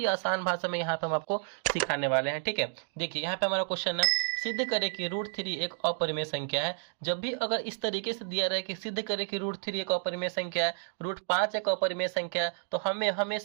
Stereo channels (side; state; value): left; silent; digital silence